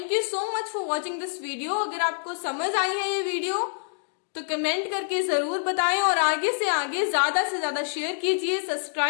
you so much for watching this video. अगर आपको समझ आई है ये वीडियो तो कमेंट करके जरूर बताएं और आगे से आगे ज्यादा से ज्यादा शेयर कीजिए,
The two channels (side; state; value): right; silent; digital silence